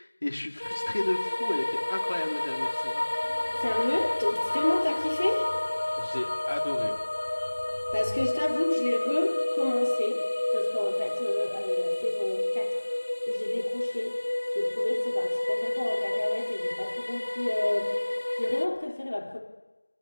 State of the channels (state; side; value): inverted; both; correlation -1.00